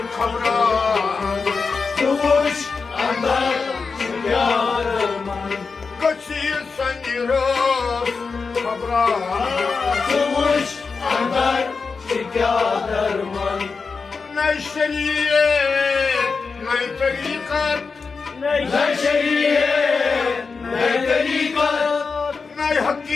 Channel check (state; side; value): quieter; right; 4.8 dB